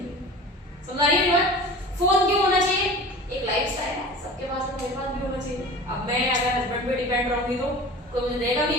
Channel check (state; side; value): normal; both; correlation 0.38